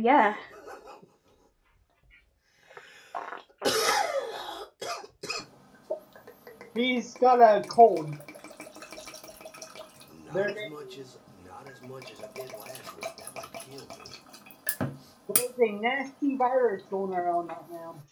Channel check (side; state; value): both; identical; correlation 1.00